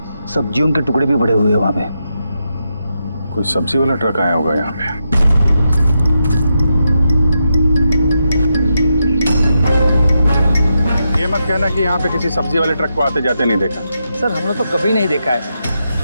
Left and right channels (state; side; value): inverted; both; correlation -0.85